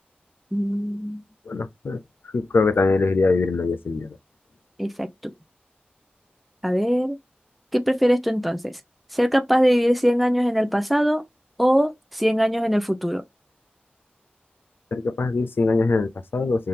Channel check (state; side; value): normal; both; correlation 0.96